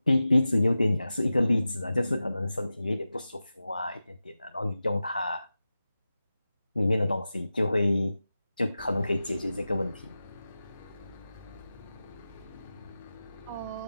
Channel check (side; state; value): both; inverted; correlation -0.94